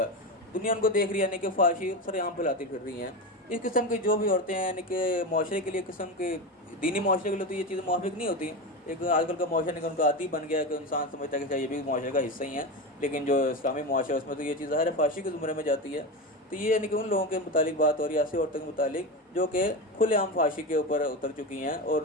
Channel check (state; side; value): normal; both; correlation 0.20